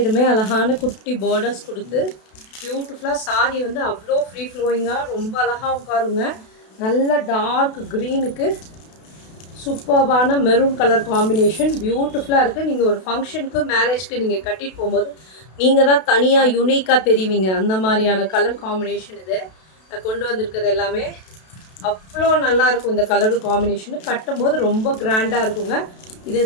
அழகான குட்டி பார்டர்ஸ் கொடுத்து பியூட்டிஃபுல்லாக சாரீ வந்து அவ்வளோ ஃப்ரீ ஃப்ளோயிங்காக ரொம்ப அழகாக உட்காருங்க. நல்ல டார்க் க்ரீனுக்கு சூப்பர்பான மெரூன் கலர் காம்பினேஷன் பியூட்டிஃபுல்லாக இருக்குது. நீங்கள் ஒரு ஃபங்க்ஷனுக்கு மேரேஜ்க்கு நீங்கள் கட்டிட்டு போகும்போது நீங்கள் தான் தனியாக யூனிக்காக தெரிவிங்க. அந்த மாதிரியான கலர் காம்பினேஷன் இது நான் கொண்டு வந்திருக்கிறது. எல்லாமே அவ்வளோ நல்லாயிருக்கும். இந்த கலர் காம்பினேஷனு கட்டும்போது ரொம்ப கிராண்டாக இருக்குங்க.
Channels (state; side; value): late; right; 32 ms